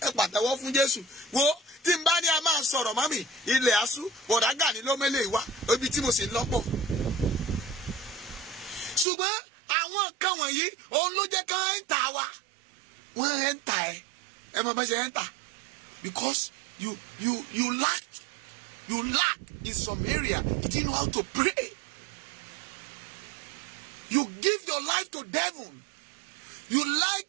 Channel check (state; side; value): drops out; left; at 9.1 s